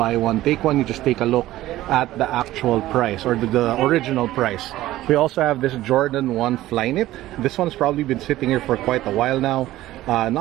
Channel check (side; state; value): left; quieter; 15.5 dB